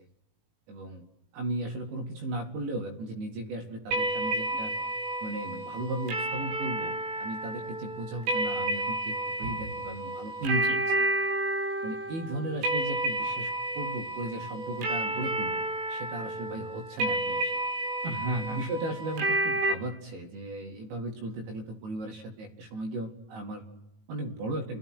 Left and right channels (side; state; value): left; late; 18 ms